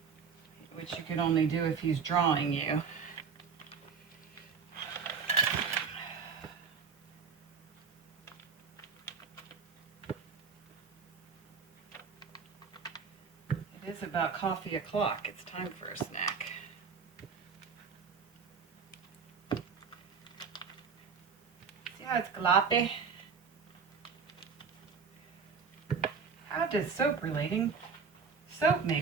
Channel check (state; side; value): quieter; left; 5.8 dB